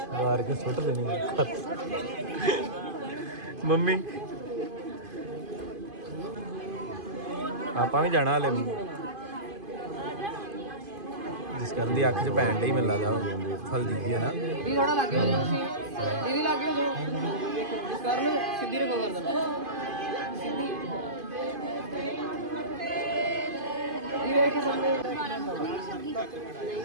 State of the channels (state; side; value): late; left; 2.5 ms